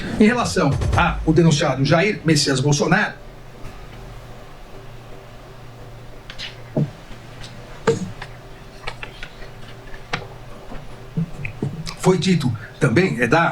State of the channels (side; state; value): both; identical; correlation 1.00